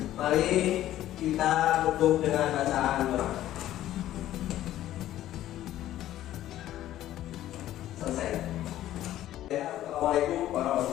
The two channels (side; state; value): right; quieter; 13.3 dB